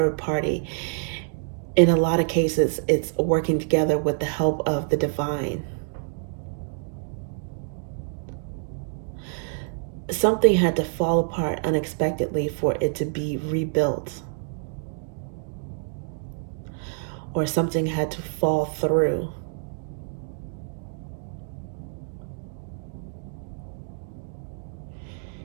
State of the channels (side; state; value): left; silent; digital silence